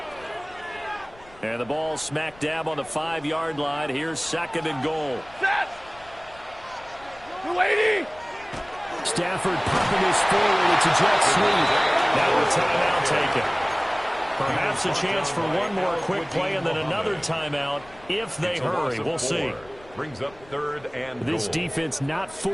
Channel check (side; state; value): left; noise; rumble, 24 dB below the sound